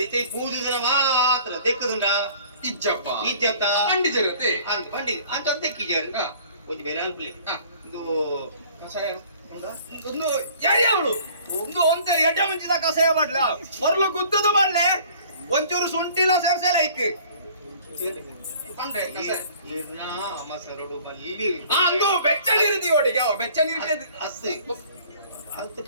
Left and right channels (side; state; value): both; inverted; correlation -0.52